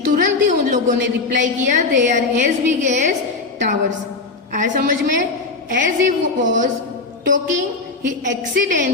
तुरंत ही उन लोगों ने रिप्लाई किया, they are as big as towers. आया समझ में, as he was talking he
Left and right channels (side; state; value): right; quieter; 3.9 dB